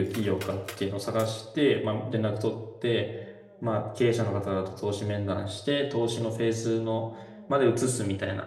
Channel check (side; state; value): both; identical; correlation 1.00